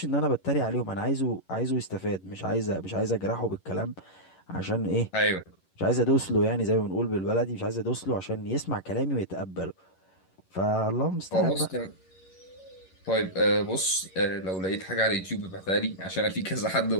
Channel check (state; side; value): late; right; 11 ms